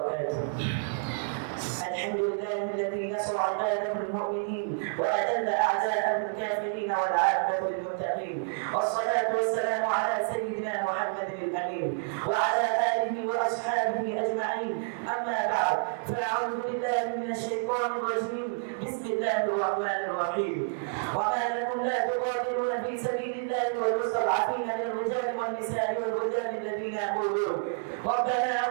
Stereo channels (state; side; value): silent; left; digital silence